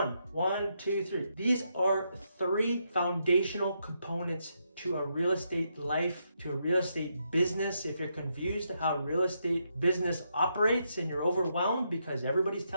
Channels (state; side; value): inverted; both; correlation -0.80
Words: 1, 2, 3. These are 3 foundational components to a real estate life, to a real estate business. If you're confused how real estate business operates and you're overwhelmed because everybody's